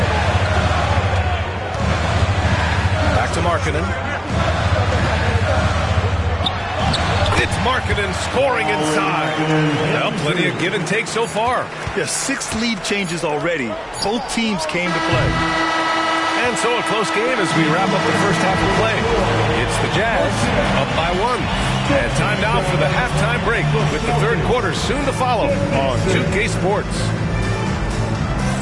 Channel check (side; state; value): both; identical; correlation 1.00